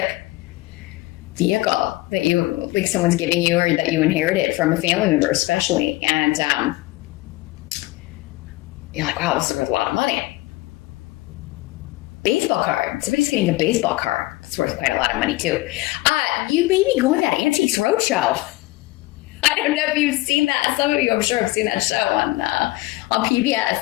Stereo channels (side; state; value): right; quieter; 20.2 dB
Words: vehicle that someone's giving you or that you inherited from a family member especially. And you're like, wow, this is worth a lot of money. Baseball card. Somebody's getting a baseball card. It's worth quite a lot of money too. You may be going to that Antiques Roadshow. I don't know if you've seen that. Some of you, I'm sure, have seen that show on